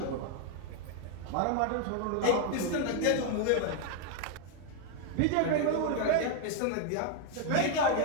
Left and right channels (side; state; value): both; different; correlation 0.00